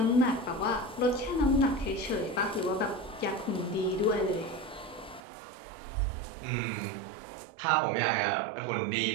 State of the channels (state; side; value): drops out; left; at 5.2 s